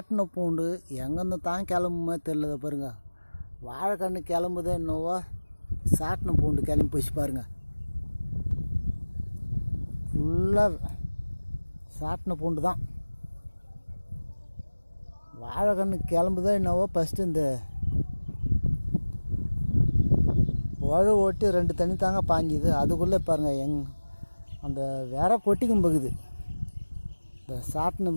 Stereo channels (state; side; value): inverted; both; correlation -1.00